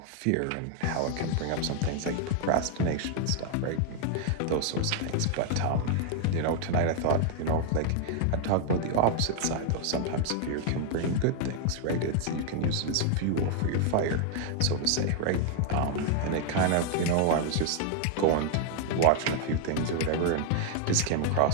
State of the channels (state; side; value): different; both; correlation 0.00